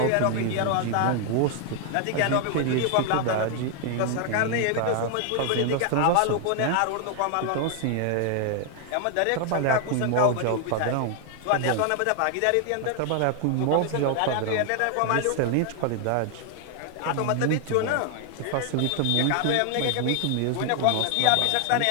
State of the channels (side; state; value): both; different; correlation 0.00